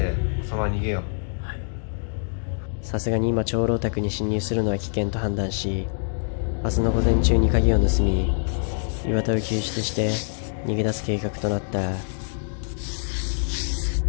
そのまま逃げよう。さすがに今長老宅に侵入するのは危険と判断し、明日の午前中に鍵を盗み、岩田を救出して逃げ出す計画となった。よ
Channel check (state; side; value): silent; right; digital silence